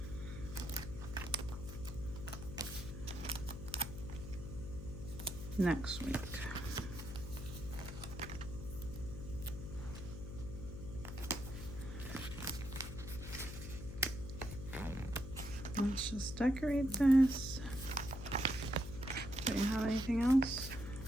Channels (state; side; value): noise; left; hum, 9 dB below the sound